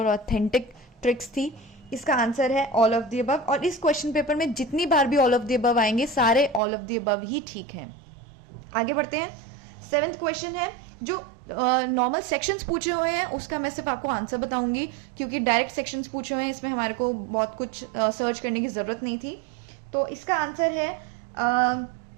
ऑथेंटिक ट्रिक्स थी। इसका आंसर है ऑल ऑफ द अबव, और इस क्वेश्चन पेपर में जितनी बार भी ऑल ऑफ द अबव आएंगे, सारे ऑल ऑफ द अबव ही ठीक हैं। आगे बढ़ते हैं। 7th क्वेश्चन है, जो नॉर्मल सेक्शंस पूछे हुए हैं उसका मैं सिर्फ आपको आंसर बताऊंगी, क्योंकि डायरेक्ट सेक्शंस पूछे हुए हैं, इसमें हमारे को बहुत कुछ सर्च करने की जरूरत नहीं थी। तो इसका आंसर है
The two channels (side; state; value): left; drops out; at 6.6 s